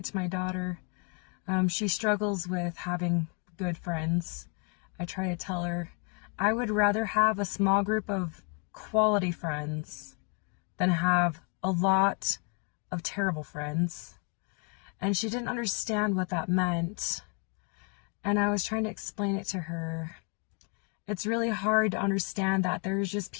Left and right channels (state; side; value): quieter; right; 38.5 dB